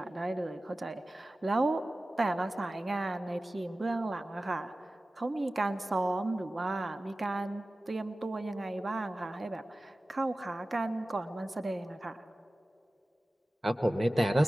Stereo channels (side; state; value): both; normal; correlation 0.96